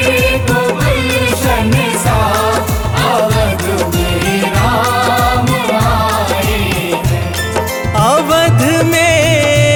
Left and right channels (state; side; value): identical; both; correlation 1.00